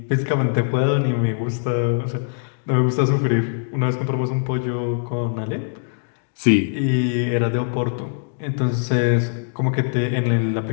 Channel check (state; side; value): silent; right; digital silence